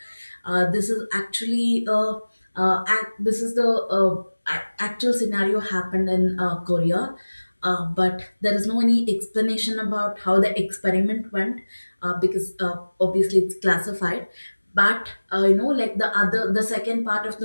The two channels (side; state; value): both; inverted; correlation -1.00